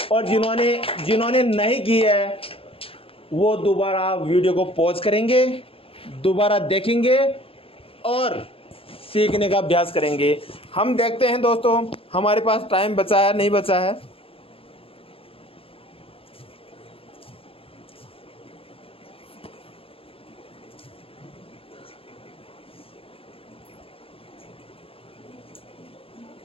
और जिन्होंने नहीं की है वो दोबारा वीडियो को पॉज करेंगे, दोबारा देखेंगे और सीखने का अभ्यास करेंगे। हम देखते हैं दोस्तों हमारे पास टाइम बचा है नहीं बचा है।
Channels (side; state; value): right; late; 0.27 ms